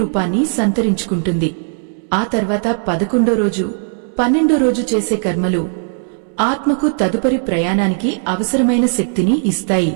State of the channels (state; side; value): silent; left; 68 dB below the other